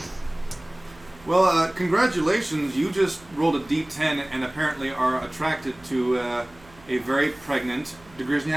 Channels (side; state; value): right; noise; hum, 25 dB below the sound